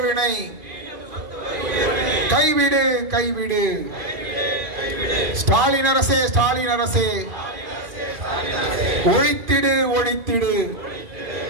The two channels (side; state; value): left; late; 2.5 ms